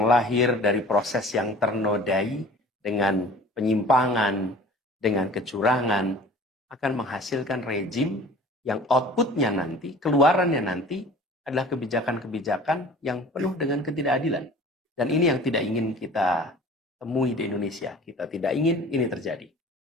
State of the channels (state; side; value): normal; both; correlation 0.45